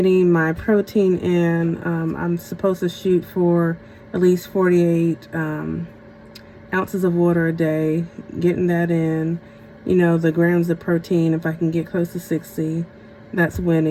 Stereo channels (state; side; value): identical; both; correlation 1.00